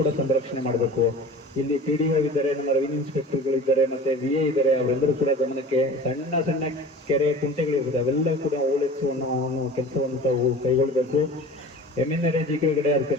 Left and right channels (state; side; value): normal; both; correlation 0.40